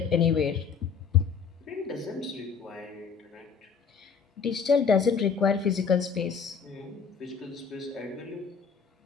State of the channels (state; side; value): quieter; right; 6.1 dB